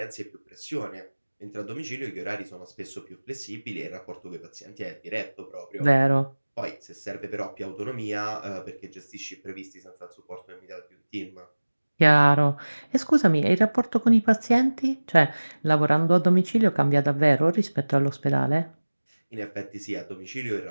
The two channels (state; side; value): inverted; both; correlation -1.00